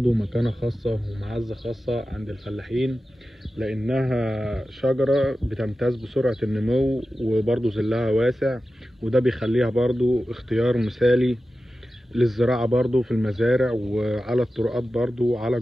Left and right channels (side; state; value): both; normal; correlation 0.93